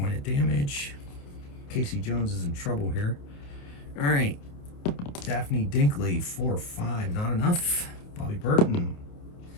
of damage. Casey Jones is in trouble here. All right. Daphne Dinkley, 4, 5, not enough. Bobby Burton,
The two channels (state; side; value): late; right; 28 ms